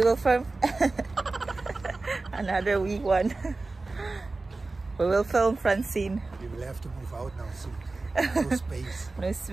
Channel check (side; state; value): left; quieter; 3.4 dB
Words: film another wee one. We will film Francine. We will have to move out now soon. No space. No